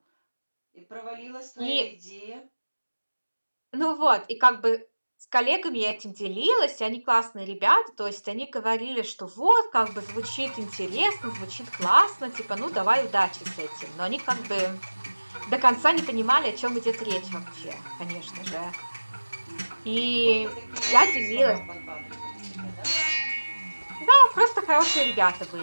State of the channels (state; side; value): inverted; both; correlation -1.00